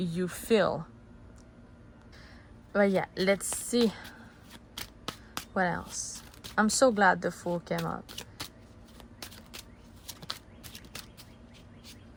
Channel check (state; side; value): identical; both; correlation 1.00